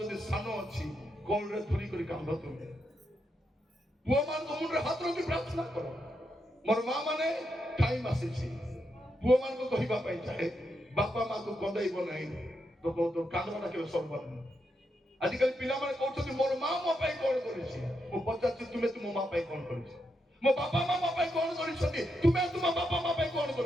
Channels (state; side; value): normal; both; correlation 0.83